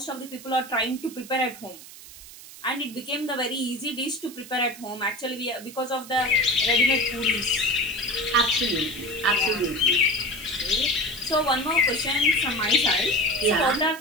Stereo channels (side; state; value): right; noise; hiss, 17 dB below the sound